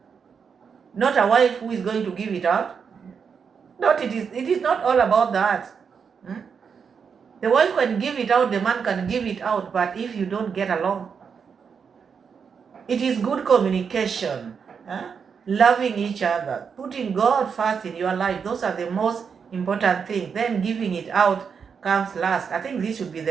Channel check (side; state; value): left; quieter; 6.3 dB